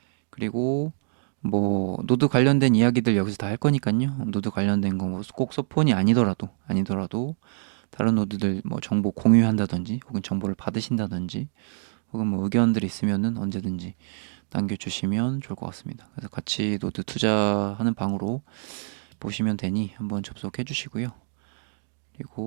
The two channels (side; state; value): left; silent; digital silence